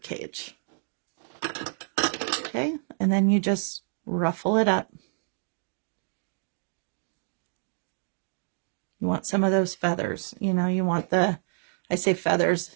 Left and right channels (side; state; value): left; silent; digital silence